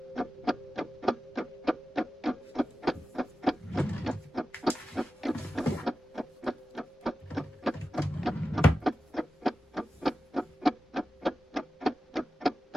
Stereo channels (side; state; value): both; normal; correlation 0.93